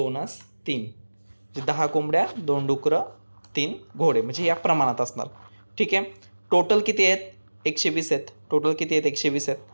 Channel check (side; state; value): both; inverted; correlation -1.00